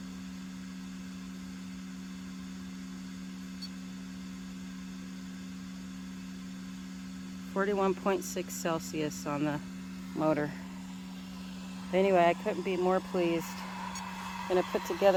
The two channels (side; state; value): both; identical; correlation 1.00